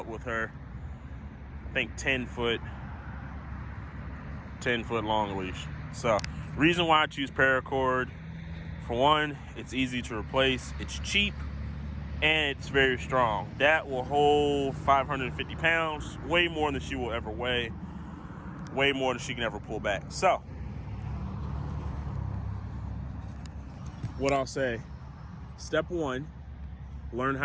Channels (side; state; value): both; identical; correlation 1.00